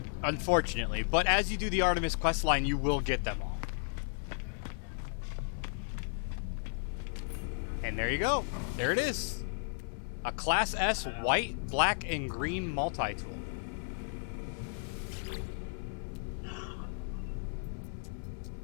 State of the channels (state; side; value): silent; right; 55 dB below the other